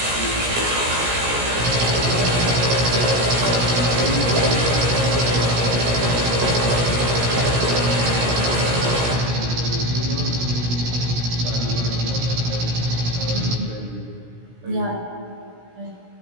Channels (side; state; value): left; late; 17 ms